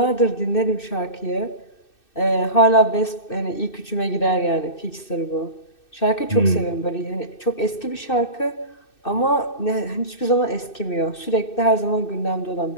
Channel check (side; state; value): right; late; 2.6 ms